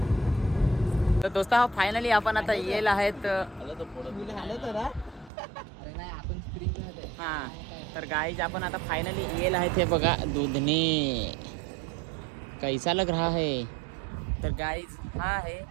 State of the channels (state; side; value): drops out; left; at 5.3 s